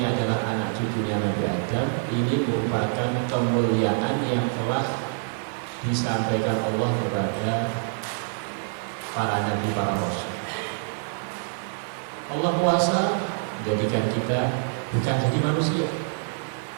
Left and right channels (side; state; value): left; silent; 61 dB below the other